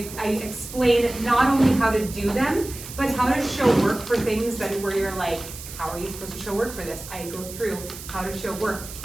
explain not only how to do them, but how to show work for things that where you're like, how are you supposed to show work for this? I go through how to show work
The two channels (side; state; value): right; noise; hiss, 13 dB below the sound